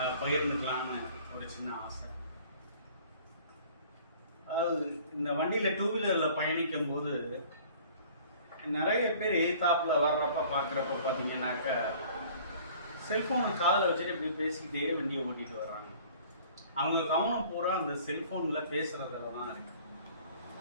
பகிர்ந்துக்கலாம்னு ஒரு சின்ன ஆசை. அதாவது இந்த வண்டியில் டூ வீலரில் பயணிக்கும் போது நிறைய பேர் எதிர்த்தாப்பில் வர்றப்ப பார்க்குறப்ப பார்த்தீங்கன்னாக்க செல்ஃபோனை காதில் வச்சுட்டு இப்படி பேசிக்கிட்டே வண்டியை ஓட்டிட்டு வர்றாங்க. அவங்க கவனம் பூரா அந்த செல்ஃபோனில் பேசுகிறதுல தான் இருக்கு.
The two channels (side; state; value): both; inverted; correlation -0.51